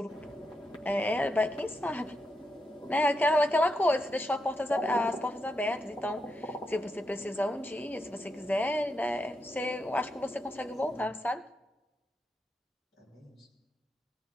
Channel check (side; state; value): both; normal; correlation 0.83